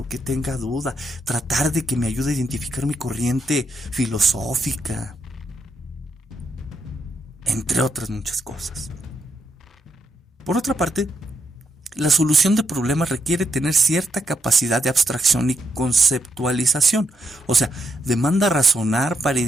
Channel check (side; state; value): both; normal; correlation 0.80